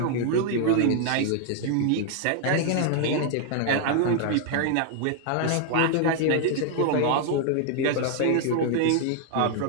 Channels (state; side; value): different; both; correlation 0.00